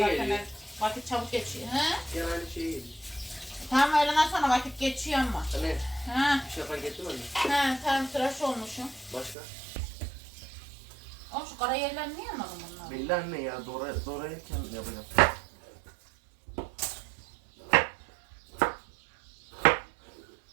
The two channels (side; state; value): left; drops out; at 9.3 s